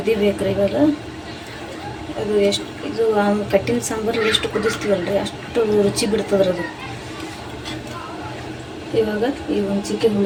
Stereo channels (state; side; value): identical; both; correlation 1.00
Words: ಇವಾಗ ಅದು ಇದು ಕಟ್ಟಿನ ಸಾಂಬಾರು ಎಷ್ಟು ಕುದಿಸ್ತೀವಲ್ರಿ ಅಷ್ಟು ರುಚಿ ಬಿಡ್ತದ್ರಿ ಅದು. ಇವಾಗ ಈ ಹುಂಚಿಕಾಯಿ